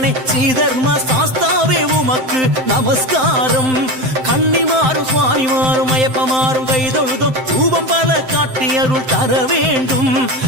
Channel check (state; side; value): late; left; 7.7 ms